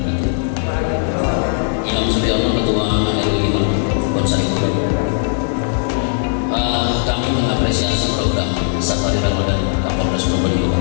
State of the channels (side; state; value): right; silent; 68 dB below the other